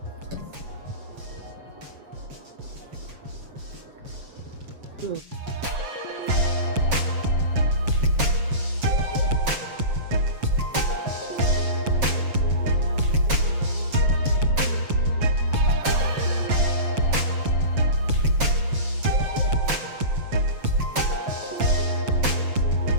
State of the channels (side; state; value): left; late; 7.4 ms